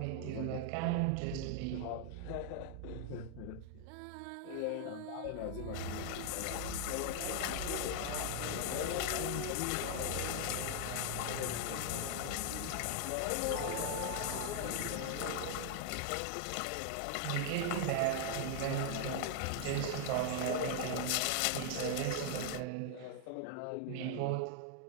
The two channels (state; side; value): different; both; correlation 0.00